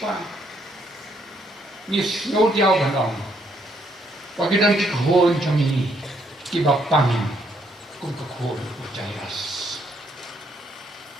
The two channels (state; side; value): normal; both; correlation 0.71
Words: Ni snow diaw bandong. Pagidan ikon jong kibapang kung kakon ucayas.